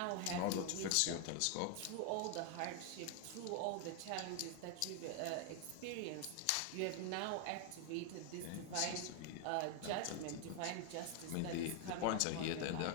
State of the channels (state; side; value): different; both; correlation 0.00